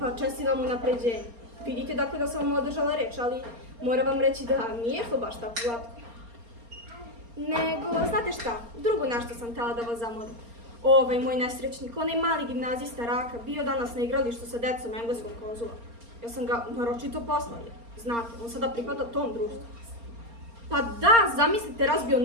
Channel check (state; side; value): late; left; 4.3 ms